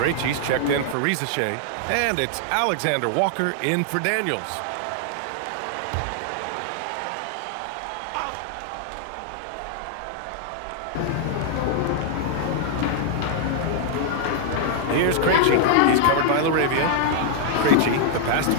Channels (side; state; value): both; different; correlation 0.00